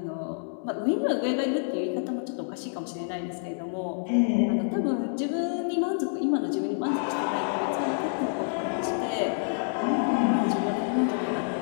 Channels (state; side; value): silent; right; 60 dB below the other